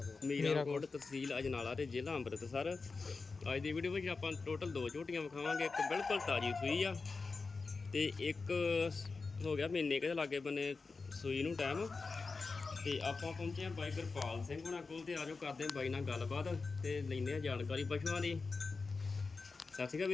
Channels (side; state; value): right; quieter; 4.3 dB